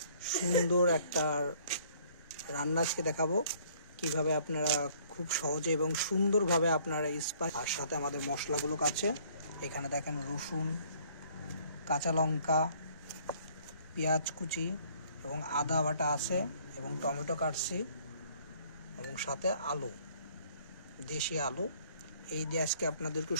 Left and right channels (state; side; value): inverted; both; correlation -0.59